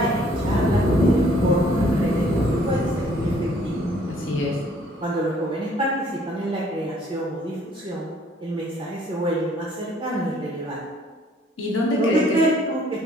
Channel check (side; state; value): both; normal; correlation 0.61